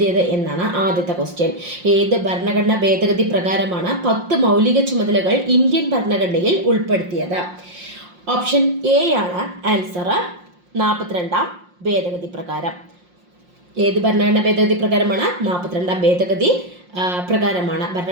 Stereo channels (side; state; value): left; late; 5.6 ms